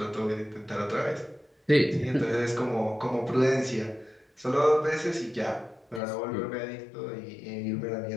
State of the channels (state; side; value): drops out; right; at 6.0 s